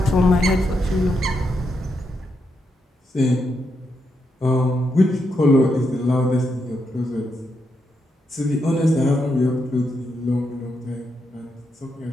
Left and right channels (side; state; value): both; normal; correlation 0.82